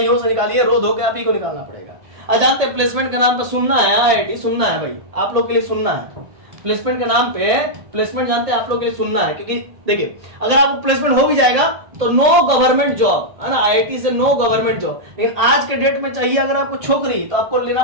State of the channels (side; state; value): left; late; 1.8 ms